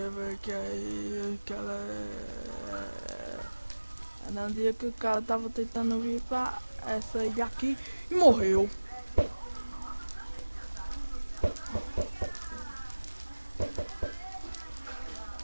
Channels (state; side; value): inverted; both; correlation -1.00